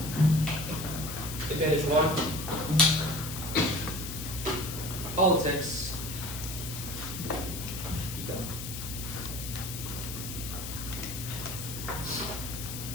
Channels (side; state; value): left; noise; hiss, 7 dB below the sound